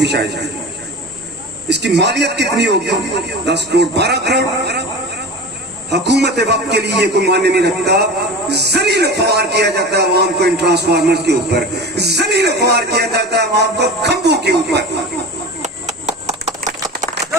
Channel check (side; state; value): both; normal; correlation 0.32